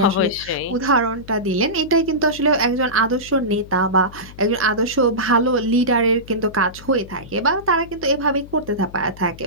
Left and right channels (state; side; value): noise; left; hum, 18 dB below the sound